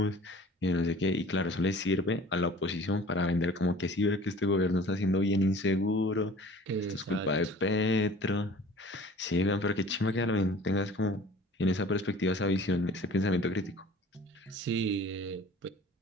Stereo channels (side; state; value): both; normal; correlation 0.47